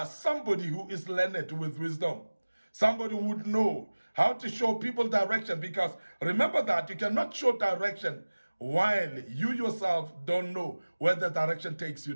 somebody who is learned with wisdom. Somebody who would know how to show people direction because remember that you cannot show direction while you yourself don't know where the direction takes you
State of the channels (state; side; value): inverted; both; correlation -1.00